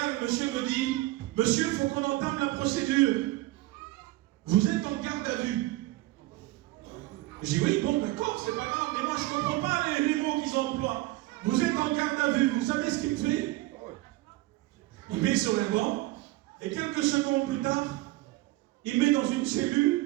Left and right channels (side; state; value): left; quieter; 18.7 dB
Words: le monsieur me dit, monsieur, il faut qu'on entame la procédure. Vous êtes en garde à vue. Je dis oui, bon, d'accord, c'est pas grave, mais moi je ne comprends pas les mots qu'ils emploient. Vous êtes en garde à vue, vous savez ce qu'il me fait? Il met sur un banc, et quelques secondes plus tard, il met dans une